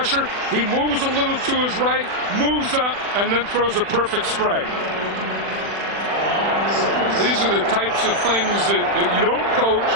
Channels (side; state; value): left; late; 40 ms